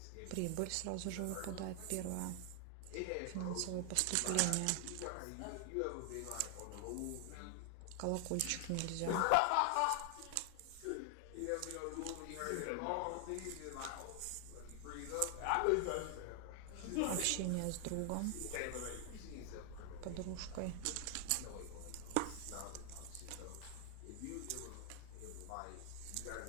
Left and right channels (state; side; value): different; both; correlation 0.00